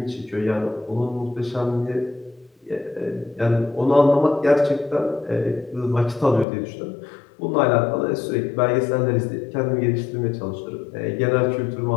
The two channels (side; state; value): right; drops out; at 6.5 s